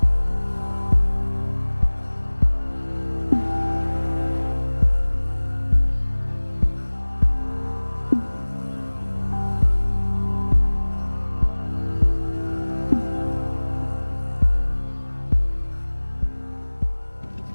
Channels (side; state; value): both; inverted; correlation -1.00